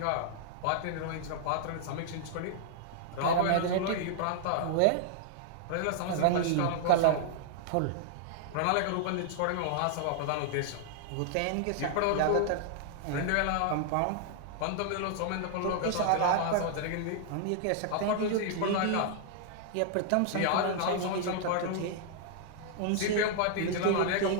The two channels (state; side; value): different; both; correlation -0.01